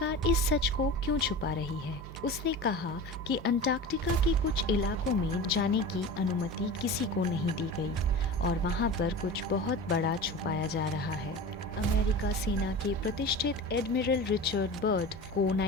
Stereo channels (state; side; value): normal; both; correlation 0.32